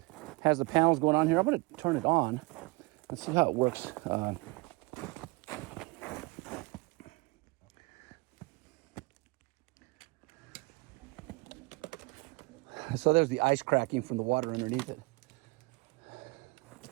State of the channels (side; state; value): left; quieter; 25.6 dB